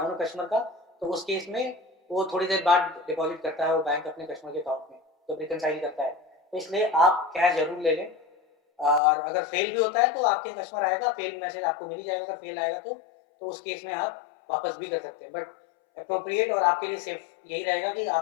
हो कस्टमर का, तो उस केस में वो थोड़ी देर बाद डिपॉजिट करता है वो बैंक अपने कस्टमर के अकाउंट में, जब रिकनसाइल करता है, तो इसलिए आप कैश जरूर ले लें। और अगर फेल भी होता है तो आपके कस्टमर आएगा, फेल मैसेज आपको मिल ही जाएगा, अगर फेल आएगा तो उस केस में आप वापस भी कर सकते हैं। बट अप्रोप्रिएट और आपके लिए सेफ यही रहेगा कि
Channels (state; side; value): drops out; right; at 9.0 s